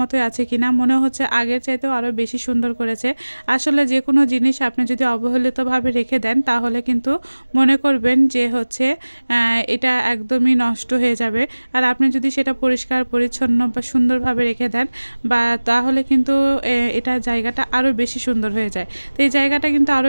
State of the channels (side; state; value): both; inverted; correlation -1.00